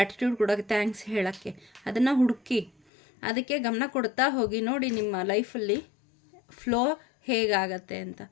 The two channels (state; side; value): drops out; right; at 2.7 s